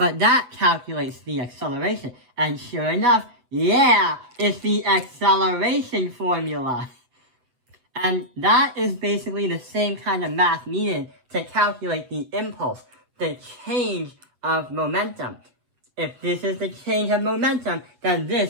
that calculates the acceleration. And sure enough, yeah, it's the acceleration formula. And that is basically the same kind of math needed to calculate the impulse, the change of momentum. If this is the change of momentum, then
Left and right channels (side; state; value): left; late; 8.2 ms